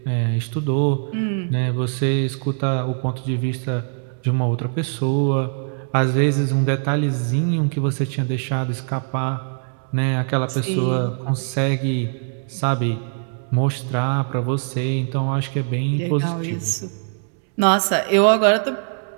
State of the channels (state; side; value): silent; left; 64 dB below the other